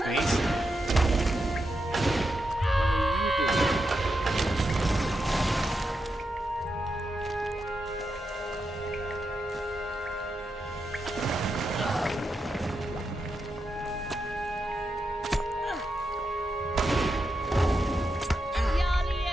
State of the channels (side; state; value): both; normal; correlation 0.86